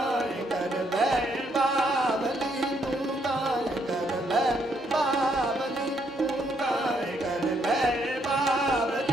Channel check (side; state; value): both; normal; correlation 0.72